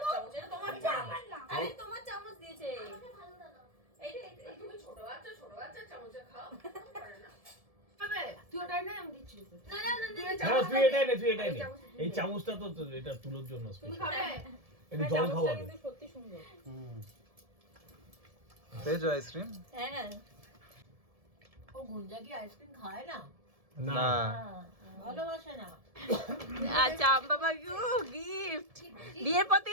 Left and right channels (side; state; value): left; late; 1.7 ms